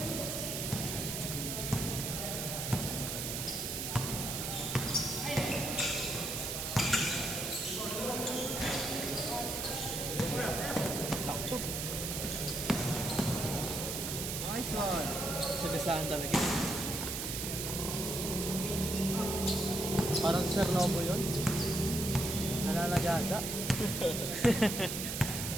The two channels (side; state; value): right; noise; hiss, 3 dB below the sound